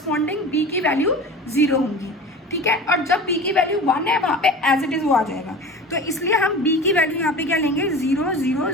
बी की वैल्यू 0 होंगी, ठीक है। और जब बी की वैल्यू 1 है वहाँ पे एज इट इज़ वो आ जाएगा, तो इसलिए हम बी की वैल्यू यहाँ पे क्या लेंगे 0 0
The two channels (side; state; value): both; normal; correlation 0.35